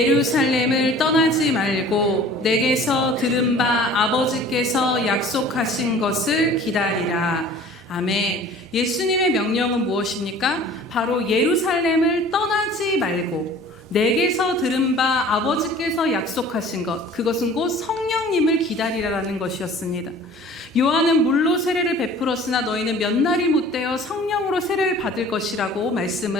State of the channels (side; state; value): both; normal; correlation 0.47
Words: 떠나지 말고 내게서 들은 바 아버지께서 약속하신 것을 기다리라. 아멘. 예수님의 명령은 무엇입니까? 바로 예루살렘을 떠나지 말고 내게서 들은 바 아버지께서 약속하신 것, 그것은 곧 성령님을 기다리라라는 것이었습니다. 요한은 물로 세례를 베풀었으나 너희는 몇 날이 못되어 성령으로 세례를 받을 것이라고